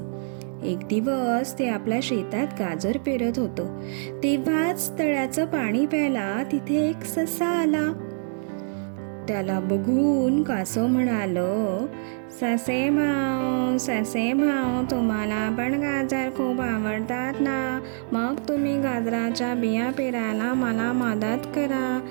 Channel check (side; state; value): left; silent; digital silence